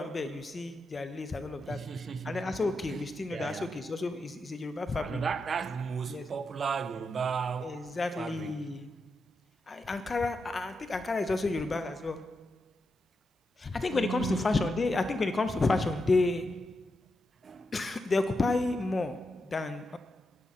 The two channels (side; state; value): both; normal; correlation 0.86